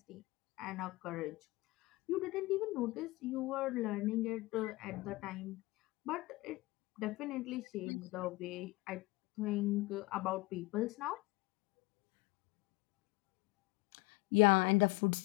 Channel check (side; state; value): right; quieter; 21.7 dB